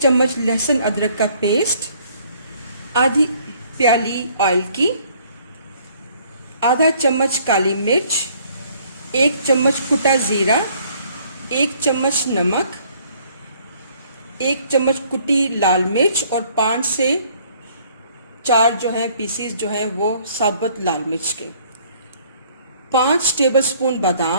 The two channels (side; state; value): both; inverted; correlation -0.61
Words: लहसुन अदरक का पेस्ट, आधी प्याली ऑयल की, आधा चम्मच काली मिर्च, 1 चम्मच कुटा ज़ीरा, 1 चम्मच नमक, 1 चम्मच कुटी लाल मिर्च और 5 से 4 जो है पीसीस जो है वो साबुत लाल मिर्च के, 5 टेबलस्पून